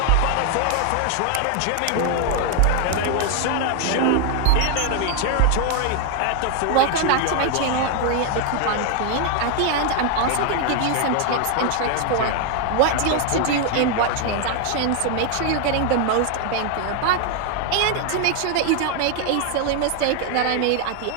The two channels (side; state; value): both; different; correlation 0.00